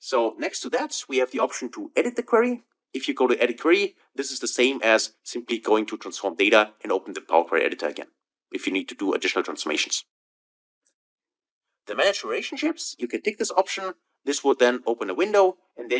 next to that, we have the option to edit the query. If you go to edit query, this is the same as simply going to transform data and open the Power Query editor again, if you need to do additional transformations. The manage relationships, you can tick this option. This would then open a window, and there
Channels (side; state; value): both; identical; correlation 1.00